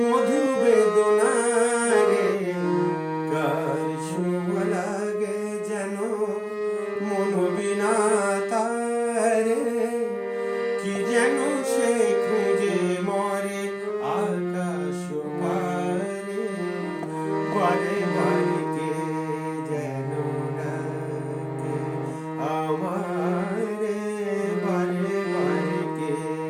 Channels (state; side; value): identical; both; correlation 1.00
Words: বেদনারে, কার ছোঁয়া লাগে যেন মনোবিনা তারে, কি যেন সে খুঁজে মরে আকাশ পারে, বারে বারে কে যেন ডাকে আমারে, বারে বারে কে